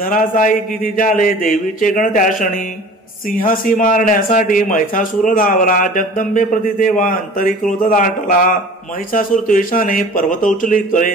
किती झाले देवीचे गण त्या क्षणी. सिंहासी मारण्यासाठी महिषासुर धावला जगदंबे प्रति तेव्हा अंतरी क्रोध दाटला. महिषासुर द्वेषाने पर्वत उचली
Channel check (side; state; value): both; normal; correlation 0.43